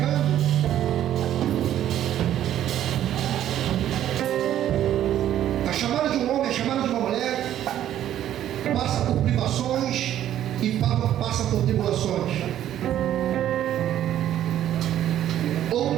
A chamada de um homem, a chamada de uma mulher, passa por privações e passa por tribulações. Outro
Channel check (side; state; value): left; quieter; 11.6 dB